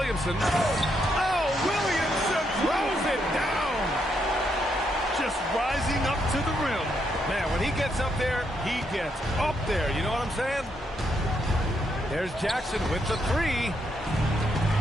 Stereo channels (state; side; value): normal; both; correlation 0.78